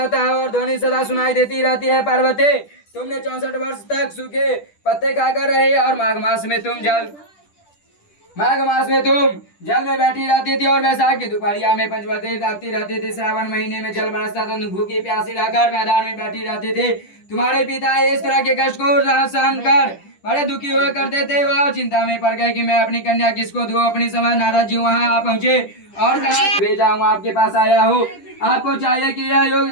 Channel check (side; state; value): right; late; 10 ms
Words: है और ध्वनि सदा सुनाई देती रहती है। पार्वती, तुमने 64 वर्ष तक सूखे पत्ते खाकर रहे और माघ मास में तुम जल में बैठी रहती थी और वैशाख की दोपहरिया में पंचवटी रहती थी। श्रावण महीने में जल बरसता तो भूखी प्यासी रहकर मैदान में बैठी रहती थी। तुम्हारे पिता इस तरह के कष्ट को सहन कर बड़े दुखी हुआ करते थे। वह चिंता में पड़ गए कि मैं अपनी कन्या किसको दूं। अपनी समझ नारद जी वहां आ पहुंचे और कहा, भेजा हूँ आपके पास आया हूँ। आपको चाहिए कि यह योग